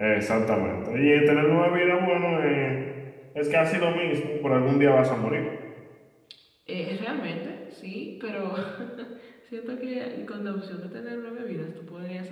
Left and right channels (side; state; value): both; identical; correlation 1.00